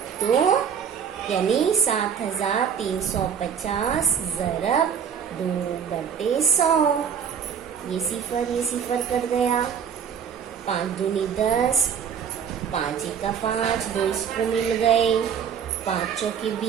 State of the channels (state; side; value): quieter; left; 7.6 dB